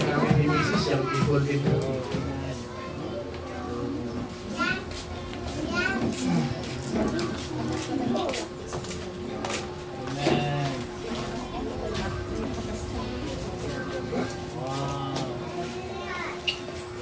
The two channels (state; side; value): identical; both; correlation 1.00